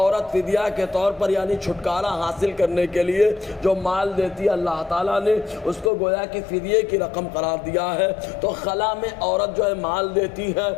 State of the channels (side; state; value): right; drops out; at 5.9 s